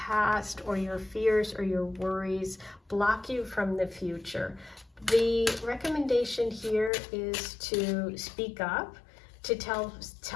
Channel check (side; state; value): right; drops out; at 6.9 s